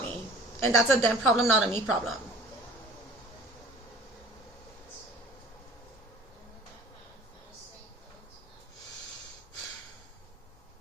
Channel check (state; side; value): normal; both; correlation 0.47